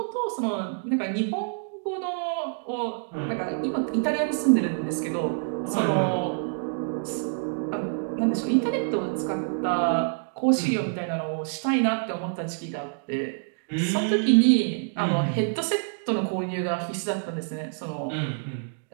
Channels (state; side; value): silent; left; digital silence